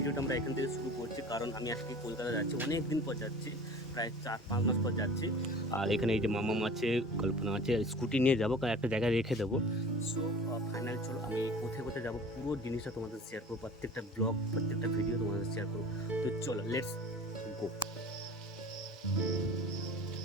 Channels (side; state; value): both; normal; correlation 0.41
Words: আমরা এখান থেকে শুরু করছি, কারণ আমি আজকে কলকাতা যাচ্ছি, অনেক দিন পর যাচ্ছি, প্রায় 4-5 মাস পর যাচ্ছি। আর এখানে এই যে মামাম আছে, কল্পনা আছে, স্কুটি নিয়ে যাবো, কারণ একটা জায়গায় রেখে দেবো। সো ফাইনাল চলো, আমি কোথায় কোথায় যাবো পুরো জিনিসটা তোমাদের শেয়ার করবো, প্রত্যেকটা ব্লগ, প্রত্যেকটা ভিডিও তোমাদের শেয়ার করবো। তো চলো, লেটস গো।